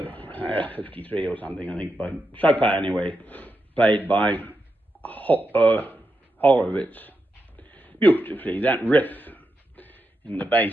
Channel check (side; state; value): both; normal; correlation 0.86